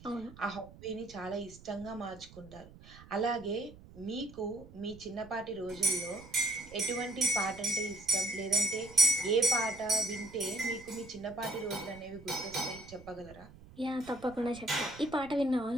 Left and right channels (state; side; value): noise; right; rumble, 19 dB below the sound